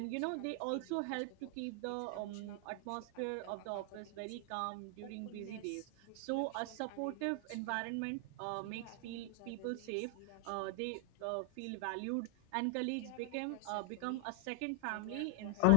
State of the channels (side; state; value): both; different; correlation 0.00